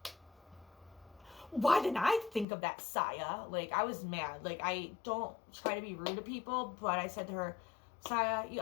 Why didn't I think of that, Saya? Like, I was mad. Like, I don't try to be rude to people, but I said to her, Saya, you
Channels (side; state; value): right; drops out; at 2.5 s